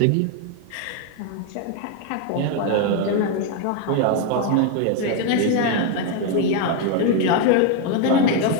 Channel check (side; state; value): both; different; correlation 0.01